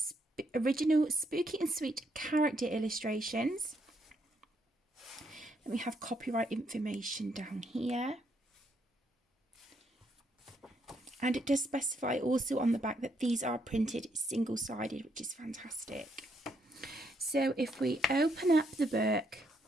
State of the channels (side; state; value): both; normal; correlation 0.74